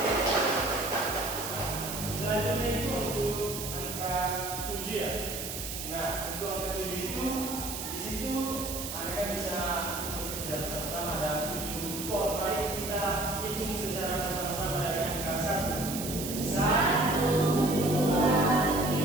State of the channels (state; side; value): noise; right; hiss, 6 dB below the sound